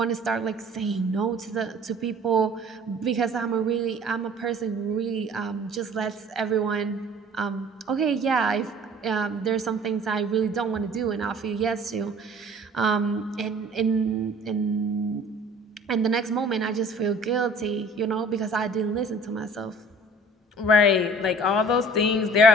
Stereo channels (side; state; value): both; normal; correlation 0.50